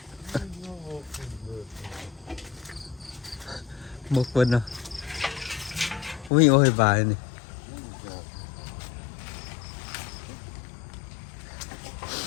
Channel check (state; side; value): drops out; right; at 6.3 s